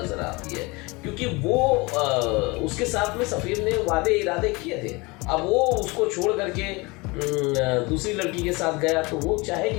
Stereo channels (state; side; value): quieter; right; 25.4 dB